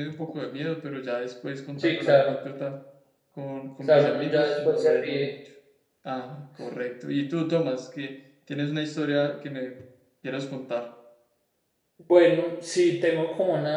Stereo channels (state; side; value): identical; both; correlation 1.00